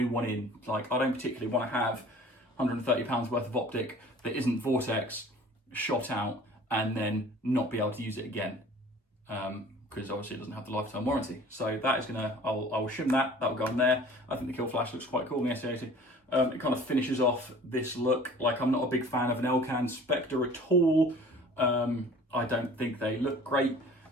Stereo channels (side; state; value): both; normal; correlation 0.47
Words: one in. Like, I don't particularly want to have £130 worth of optic that isn't Vortex shot out and then not be able to use it again, because obviously it doesn't have the lifetime warranty. So that is gonna, I'll shim that. That will go on there. I think the kill flash looks quite cool in the S80. It kind of finishes off this look. Like, I'm not a big fan of an Elcan Spectre at all. I don't think they look great.